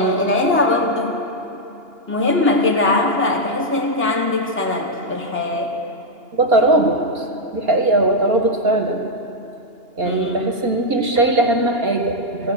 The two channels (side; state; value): left; late; 2.8 ms